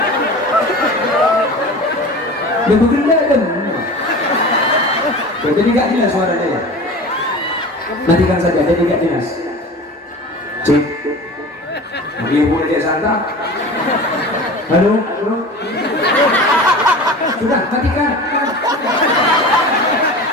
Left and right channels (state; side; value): normal; both; correlation 0.36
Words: Dia bergenda kan? Jadi tidak jelas suaranya ya. Matikan saja, jadi tidak jelas. Cek. Dia boleh dia santap. Halo. Sudah, matikan.